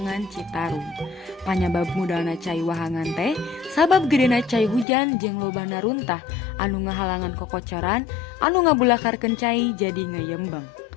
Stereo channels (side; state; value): right; drops out; at 4.9 s